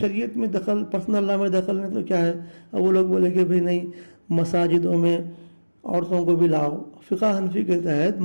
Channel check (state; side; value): inverted; both; correlation -1.00